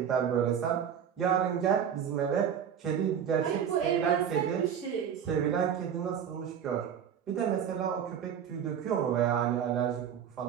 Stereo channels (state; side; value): quieter; left; 8.4 dB